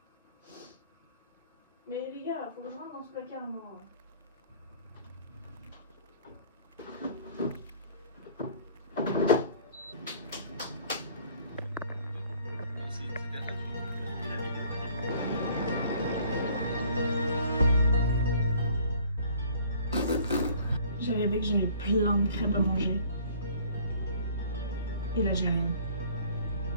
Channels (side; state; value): both; inverted; correlation -0.54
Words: Mais les gars, faut que je rentre dans ce placard, moi. J'ai rêvé que j'avais plein de crêpes à manger. Et là, j'ai rien.